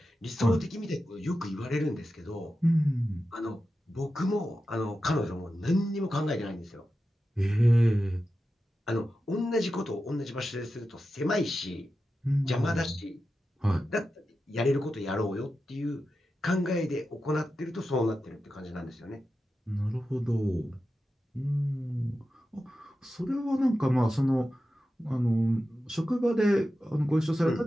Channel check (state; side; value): normal; both; correlation 0.91